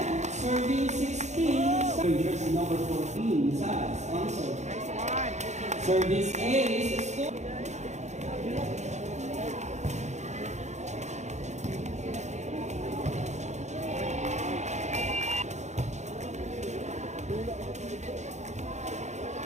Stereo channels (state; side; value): late; left; 0.33 ms